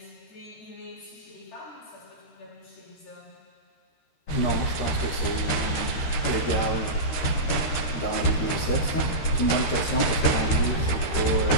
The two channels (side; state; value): right; late; 13 ms